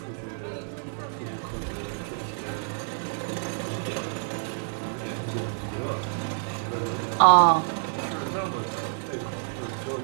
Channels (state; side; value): silent; left; 59 dB below the other